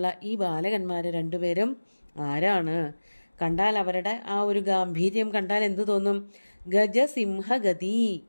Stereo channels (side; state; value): both; inverted; correlation -1.00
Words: ഈ ബാലകന്മാർ 2 പേരും ആരാണ്? കണ്ടാൽ അവരുടെ ആ ഒരു ഗാംഭീര്യം കണ്ടാൽ എന്തു തോന്നും? ഗജസിംഹഗതി,